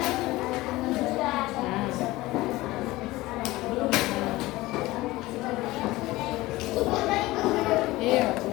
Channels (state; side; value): quieter; right; 19.0 dB